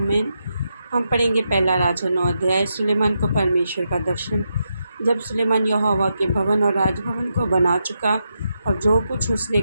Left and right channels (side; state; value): both; inverted; correlation -0.84